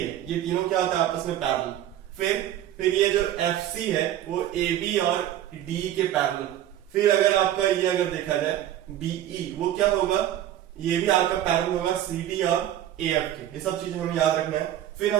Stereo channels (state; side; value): quieter; left; 12.1 dB